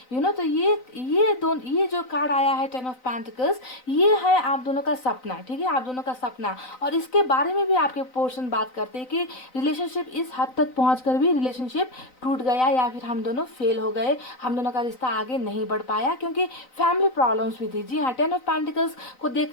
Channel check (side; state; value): right; late; 3.9 ms